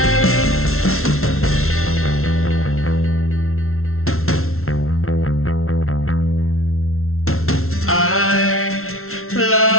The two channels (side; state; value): right; late; 0.62 ms